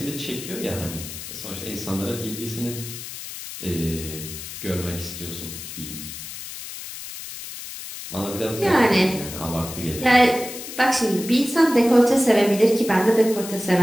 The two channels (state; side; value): noise; left; hiss, 10 dB below the sound